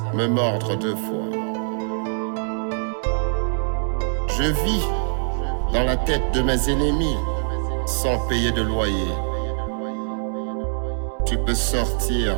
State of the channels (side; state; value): left; silent; 63 dB below the other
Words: me mordre deux fois. Je vis dans la tête de mes ennemis sans payer de loyer. Tu peux sortir